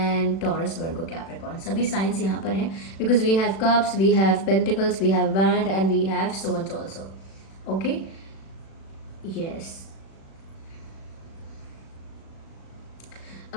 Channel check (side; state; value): right; late; 36 ms